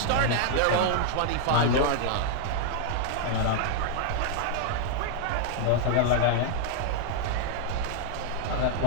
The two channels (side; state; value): both; different; correlation 0.00